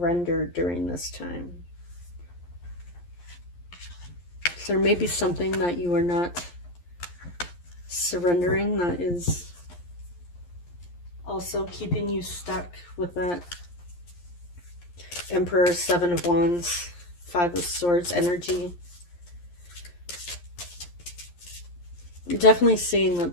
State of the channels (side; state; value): right; late; 11 ms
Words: during this time. So there may be something that you are not surrendering that is also keeping you stuck with that Emperor, Seven of Wands, Five of Swords energy. I'm definitely seeing that